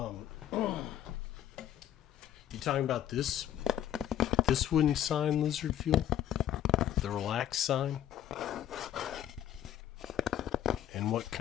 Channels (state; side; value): quieter; right; 11.1 dB